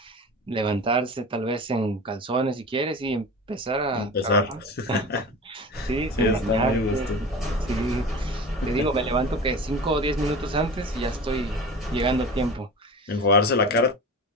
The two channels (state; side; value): normal; both; correlation 0.33